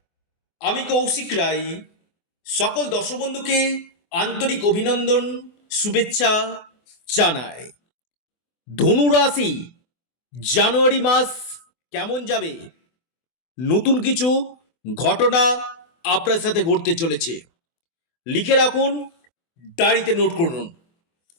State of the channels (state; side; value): late; right; 24 ms